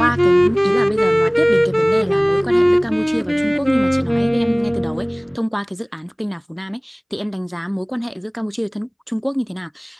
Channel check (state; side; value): identical; both; correlation 1.00